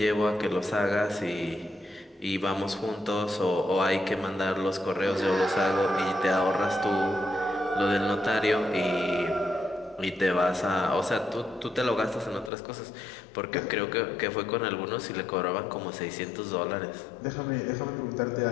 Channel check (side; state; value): right; drops out; at 12.5 s